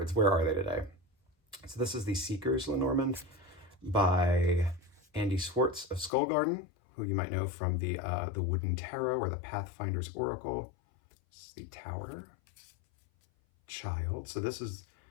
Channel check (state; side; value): drops out; right; at 6.1 s